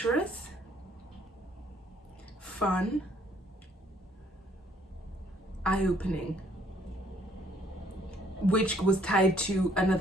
fun, eye-opening. Which was tied to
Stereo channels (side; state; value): both; normal; correlation 0.64